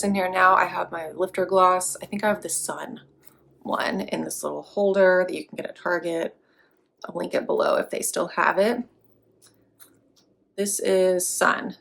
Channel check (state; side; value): identical; both; correlation 1.00